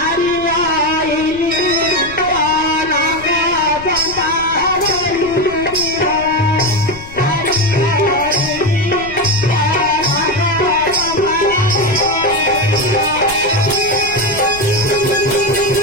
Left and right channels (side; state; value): left; noise; rumble, 17 dB below the sound